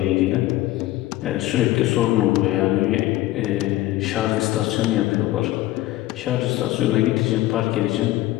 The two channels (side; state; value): right; quieter; 16.3 dB